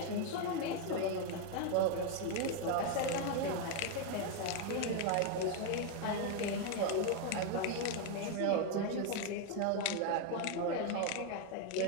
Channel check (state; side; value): different; both; correlation 0.01